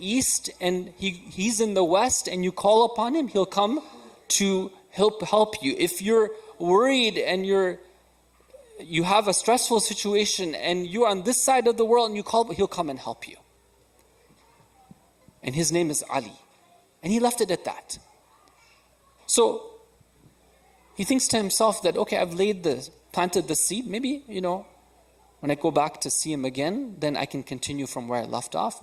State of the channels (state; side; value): identical; both; correlation 1.00